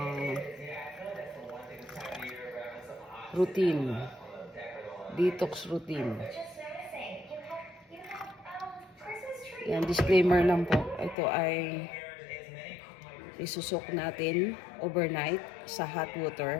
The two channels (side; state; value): right; drops out; at 11.2 s